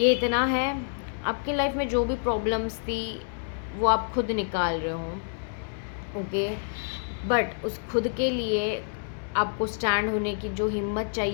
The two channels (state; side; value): silent; right; digital silence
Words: इतना है। आपकी लाइफ में जो भी प्रॉब्लम्स थी वो आप खुद निकाल रहे हो। ओके, बट उस खुद के लिए आपको स्टैंड होने की जो हिम्मत